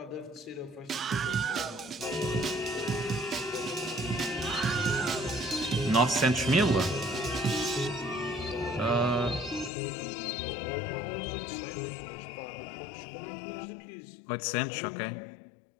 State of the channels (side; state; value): right; drops out; at 9.7 s